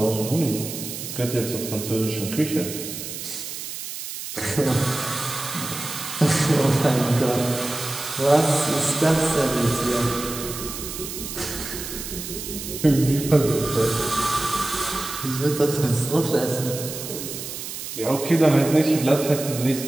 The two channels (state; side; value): noise; right; hiss, 8 dB below the sound